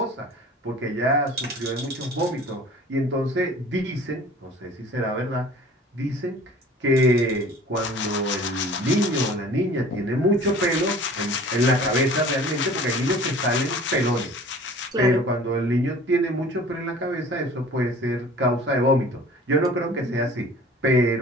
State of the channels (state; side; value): normal; both; correlation 0.46